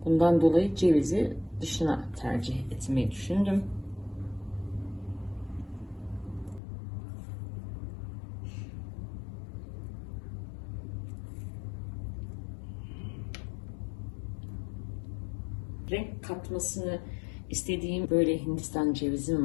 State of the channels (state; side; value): drops out; right; at 6.6 s